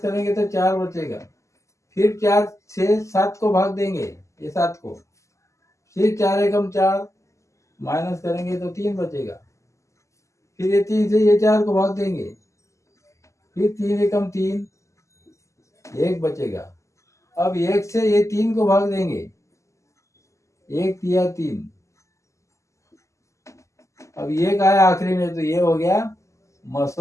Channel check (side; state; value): right; late; 0.15 ms